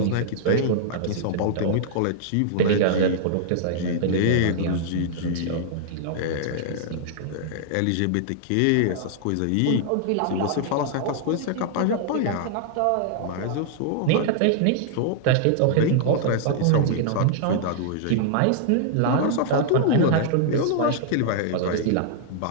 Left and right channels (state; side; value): different; both; correlation -0.01